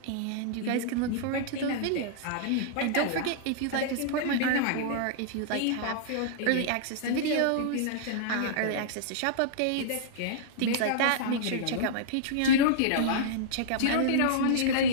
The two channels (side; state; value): both; different; correlation -0.02